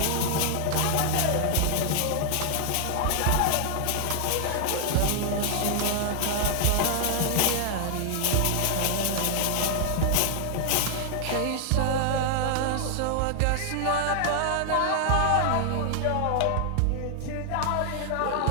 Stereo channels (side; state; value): both; different; correlation 0.00